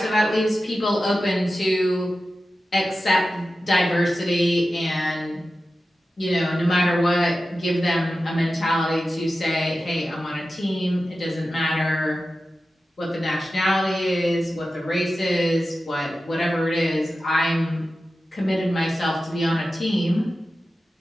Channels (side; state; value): both; normal; correlation 0.93